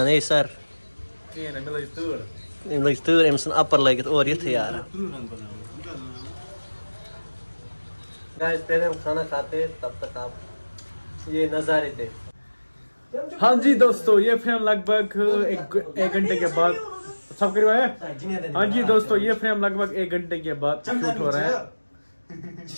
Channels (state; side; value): inverted; both; correlation -1.00